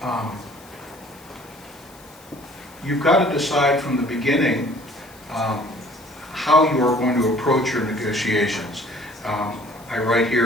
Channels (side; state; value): left; noise; hiss, 24 dB below the sound